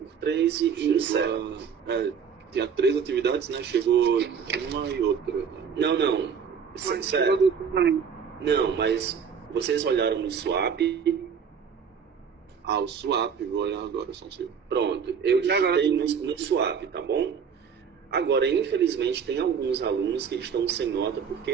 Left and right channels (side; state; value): left; quieter; 6.8 dB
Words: 3 e encerra. Tinha 3 atividades, né? Chegou uma e outra. Não. Sério. Não, mas vocês olharam no swap. O swap, vou olhar agora, só um segundo. Pronto, eu digitei no swap, tá bom? Agora, infelizmente, tem alguns alunos que estão sem nota